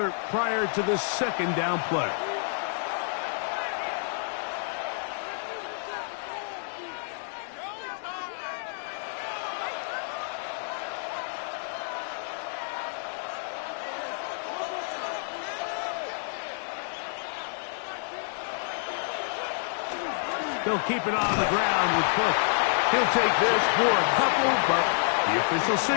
prior to the second down play. He'll keep it on the ground with Cook. He'll take this for a couple, but the official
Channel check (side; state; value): right; silent; 59 dB below the other